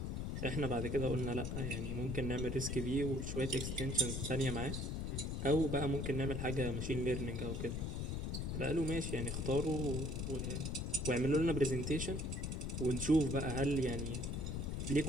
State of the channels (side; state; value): left; noise; rumble, 2 dB below the sound